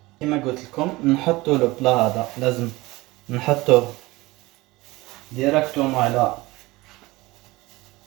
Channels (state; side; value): quieter; left; 20.9 dB